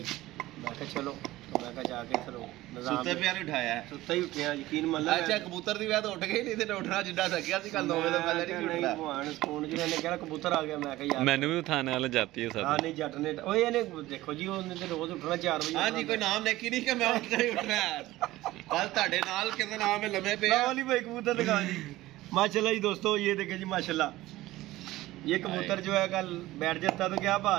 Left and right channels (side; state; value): left; quieter; 17.1 dB